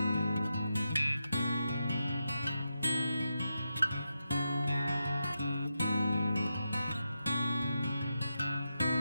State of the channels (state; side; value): inverted; both; correlation -0.87